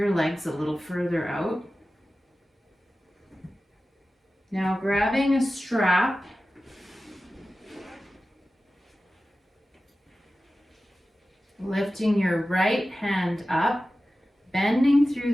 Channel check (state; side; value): normal; both; correlation 0.95